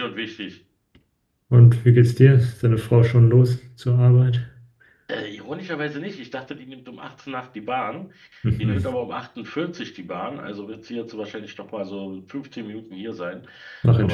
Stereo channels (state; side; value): identical; both; correlation 1.00